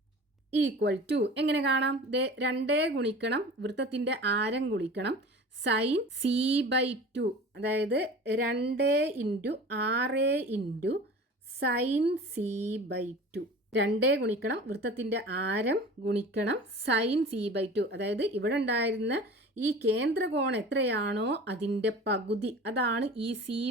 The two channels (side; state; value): both; normal; correlation 0.39